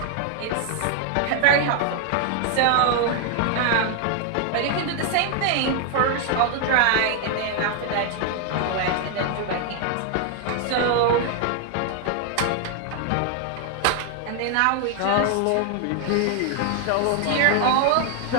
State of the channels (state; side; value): different; both; correlation 0.00